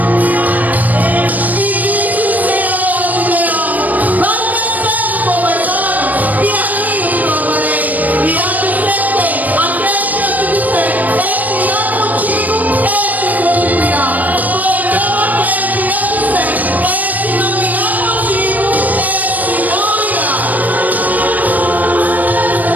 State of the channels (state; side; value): late; left; 0.079 ms